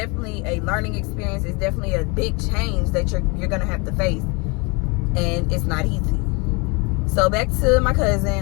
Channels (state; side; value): quieter; right; 29.4 dB